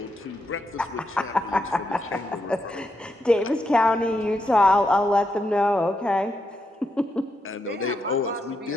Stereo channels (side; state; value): both; normal; correlation 0.82